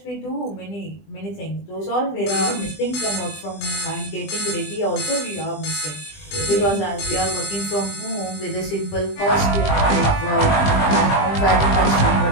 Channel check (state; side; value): late; right; 20 ms